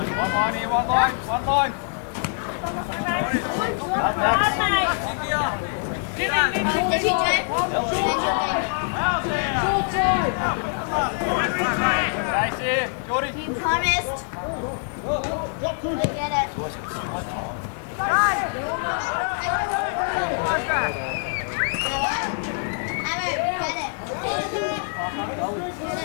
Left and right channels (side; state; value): right; silent; 62 dB below the other